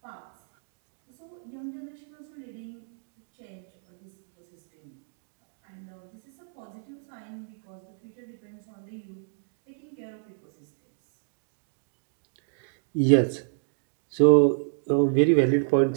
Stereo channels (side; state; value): left; silent; digital silence